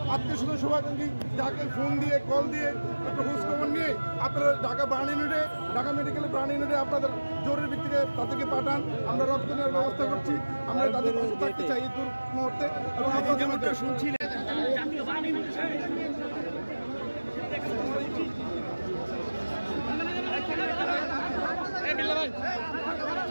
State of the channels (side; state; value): both; inverted; correlation -1.00